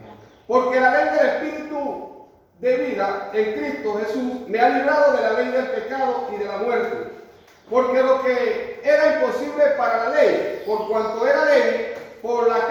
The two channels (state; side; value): identical; both; correlation 1.00